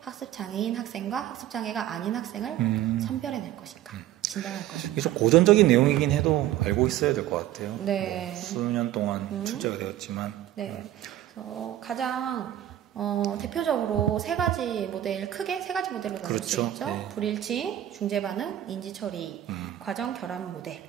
학생과 학습장애가 아닌 학생을 선별해낼 것인가, 진단할 것인가. 이게 좀 고전적인 내용이긴 해도 알고 있어야 될 것 같아요. 네. 수년 동안 출제가 되었지만. 네. 그래서 가장 대표적으로 세 가지 크게 세 가지 모델로 나눌 그렇죠. 수 있죠. 네. 불일치, 중재반응, 인지처리, 과정 결합 모델이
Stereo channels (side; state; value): left; quieter; 12.6 dB